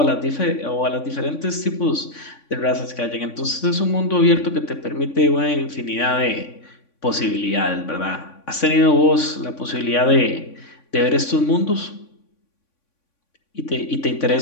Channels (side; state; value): right; late; 3.5 ms